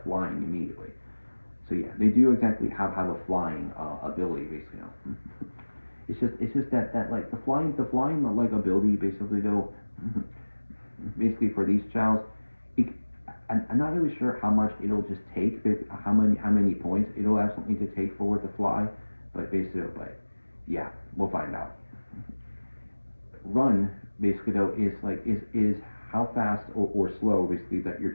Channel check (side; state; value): both; inverted; correlation -1.00